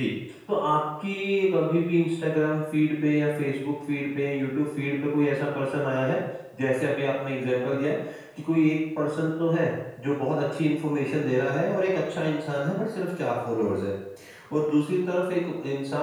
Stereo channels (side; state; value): both; identical; correlation 1.00